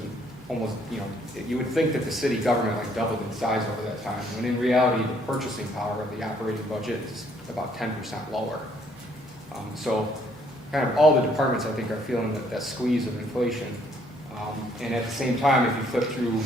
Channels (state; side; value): normal; both; correlation 0.66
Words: almost, you would think that the city government like doubled in size over that time, when in reality, the purchasing power of the operating budget is about 10% lower. So kind of all the departments, I think, are feeling that squeeze of inflation. And at the same time, if you flip through